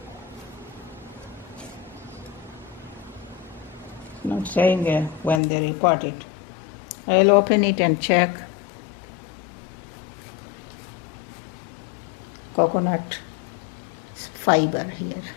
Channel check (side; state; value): right; drops out; at 5.4 s